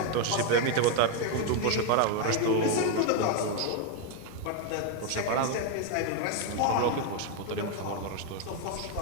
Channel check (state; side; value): different; both; correlation 0.01